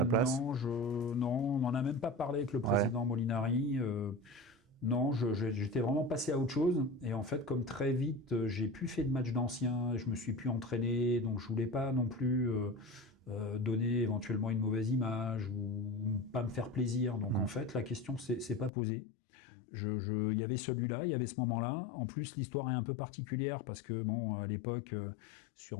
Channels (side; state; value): right; drops out; at 18.7 s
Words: place. Non, on n'en a même pas parlé avec le président Molinari. Non, j'étais vraiment passé à autre chose. Et en fait, comme très vite, j'ai plus fait de matchs d'anciens, je me suis plus entraîné, donc je voulais pas non plus donner éventuellement une mauvaise image ou pas me faire plaisir. Donc en fait, la question c'est pas posée. Il y avait celui-là, il y avait ce moment-là. En plus, l'histoire est un peu particulière parce que bon, à l'époque,